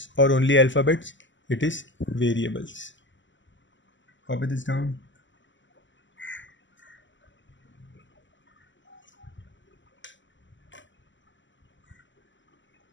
or only alphabets, it is variables. Copy this down.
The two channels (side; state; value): right; late; 0.54 ms